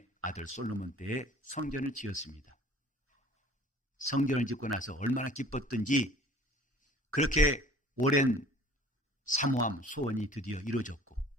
아들 솔로몬 때에 성전을 지었습니다. 성전을 짓고 나서 얼마나 기뻤던지 그렇게 오랜 사모함, 소원이 드디어 이루어졌고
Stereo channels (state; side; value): normal; both; correlation 0.49